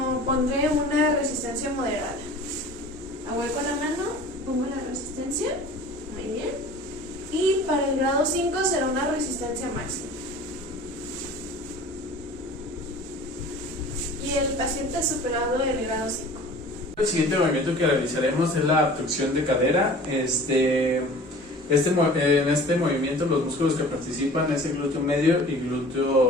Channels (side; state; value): right; noise; rumble, 26 dB below the sound